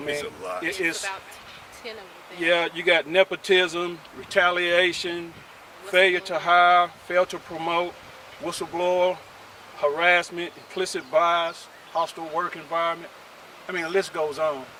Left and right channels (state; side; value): identical; both; correlation 1.00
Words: mean, It's a lot. it's About 10 of them. yeah, you got nepotism, retaliation, failure to hire, fail to promote, whistleblower, harassment, implicit bias, hostile work environment. I mean, the list goes on.